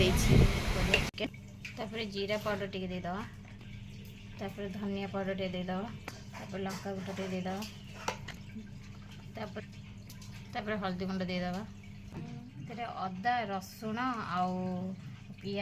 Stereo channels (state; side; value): identical; both; correlation 1.00